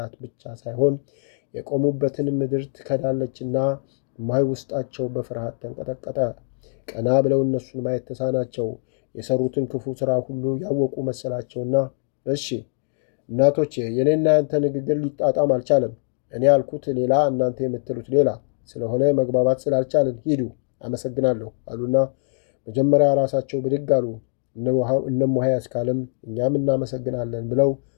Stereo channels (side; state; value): right; silent; digital silence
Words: ብቻ ሳይሆን የቆሙበትን ምድር ትከዳለችና እማሆይ ውስጣቸው በፍርሃት ተንቀጠቀጠ። ቀና ብለው እነሱን ማየት ተሳናቸው። የሰሩትን ክፉ ሥራ ሁሉ ያወቁ መሰላቸውና እሺ እናቶቼ፣ የኔና ያንተ ንግግር ሊጣጣም አልቻለም። እኔ ያልኩት ሌላ፣ እናንተ የምትሉት ሌላ ስለሆነ መግባባት ስላልቻልን ሂዱ፣ አመሰግናለሁ አሉና መጀመሪያ ራሳቸው ብድግ አሉ። እነ እማሆይ አስካለም እኛም እናመሰግናለን ብለው